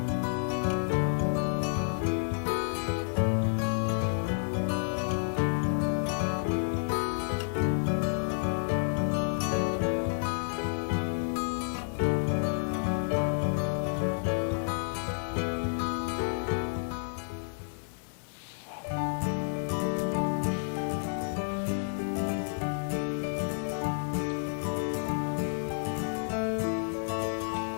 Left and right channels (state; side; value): silent; right; 58 dB below the other